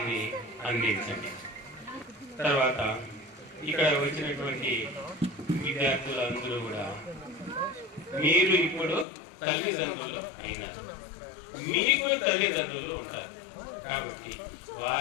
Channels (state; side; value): drops out; right; at 9.1 s